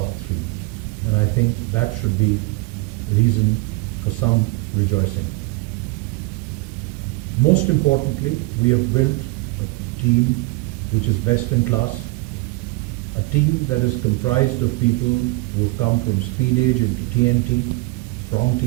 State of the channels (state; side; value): quieter; left; 23.0 dB